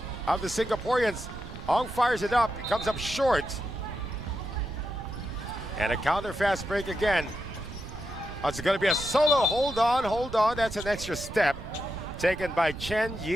of the Singaporeans. Ong fires it up, it comes up short. And a counter fast break again. Oh, it's going to be a solo. Hold on. That's an extra step taken by Chen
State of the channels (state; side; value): noise; right; rumble, 11 dB below the sound